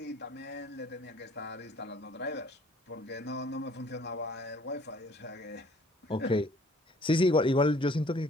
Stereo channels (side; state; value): both; normal; correlation 0.57